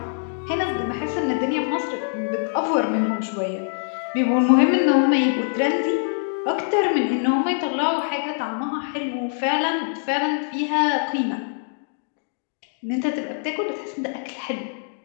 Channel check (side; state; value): right; silent; 63 dB below the other